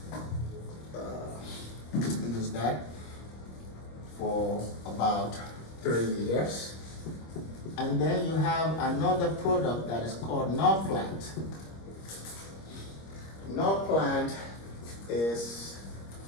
use that for about 3 years. And then you have another product that is called Norplant. Norplant is,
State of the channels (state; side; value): late; right; 26 ms